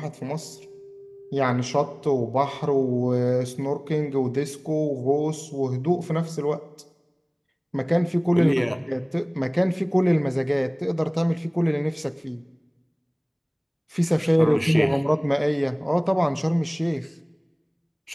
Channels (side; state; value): both; identical; correlation 1.00